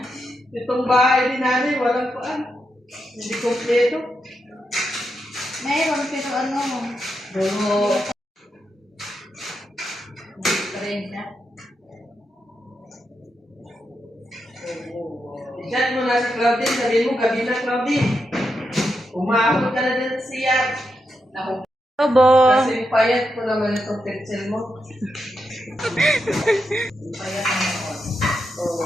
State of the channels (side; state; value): both; normal; correlation 0.84